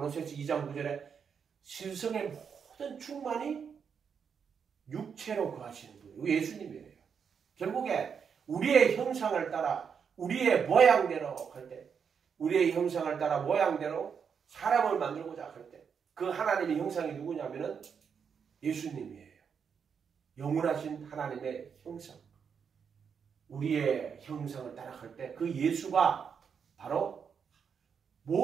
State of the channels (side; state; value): left; quieter; 6.8 dB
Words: 2장 9절에 신성의 모든 충만이 육체로 거하시는 분이에요. 예수님이에요. 결국에 우리의 형상을 따라 우리의 모양대로 할 때 우리의 형상을 따라 모양대로 사람을 만들고자 할 때 그 하나님의 형상이 누구냐면은 예수님이에요. 영원하신 하나님의 형상. 우리의 형상을 따라갈 때 그 예수가 바로